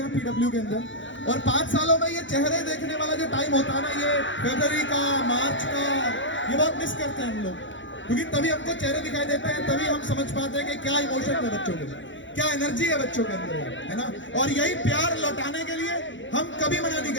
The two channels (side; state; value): right; late; 0.55 ms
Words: हैं पीडब्ल्यू के अंदर, और 5 सालों में ये चेहरे देखने वाला जो टाइम होता है ना, ये फरवरी का, मार्च का, ये बहुत मिस करते हैं हम लोग, क्योंकि तभी हमको चेहरे दिखाई देते हैं, तभी हम समझ पाते हैं कि क्या इमोशन है बच्चों के, क्या एनर्जी है बच्चों के अंदर, है ना। और यही प्यार लौटाने के लिए हम कभी मना नहीं